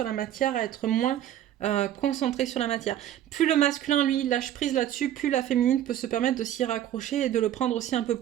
la matière, à être moins concentré sur la matière. Plus le masculin, lui, lâche prise là-dessus, plus la féminine peut se permettre de s'y raccrocher et de le prendre aussi un peu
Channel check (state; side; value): quieter; left; 11.7 dB